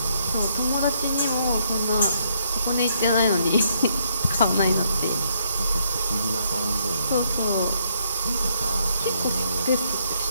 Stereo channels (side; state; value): both; inverted; correlation -0.73